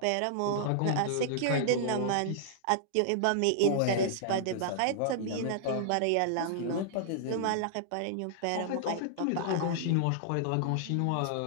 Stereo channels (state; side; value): different; both; correlation -0.01